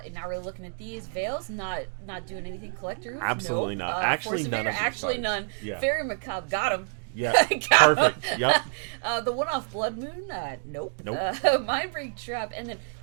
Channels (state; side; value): silent; left; digital silence